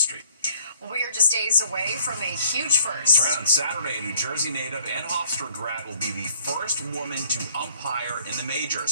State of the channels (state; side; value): inverted; both; correlation -0.58